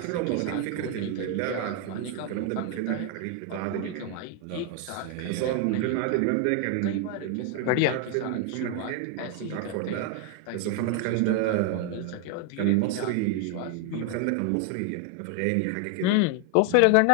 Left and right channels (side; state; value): both; different; correlation 0.00